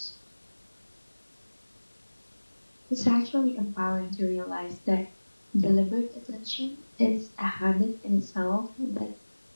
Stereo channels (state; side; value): inverted; both; correlation -1.00